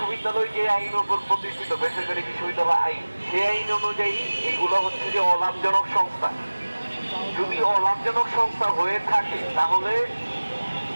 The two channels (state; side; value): inverted; both; correlation -1.00